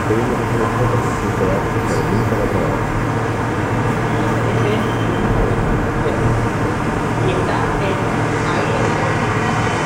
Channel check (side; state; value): both; identical; correlation 1.00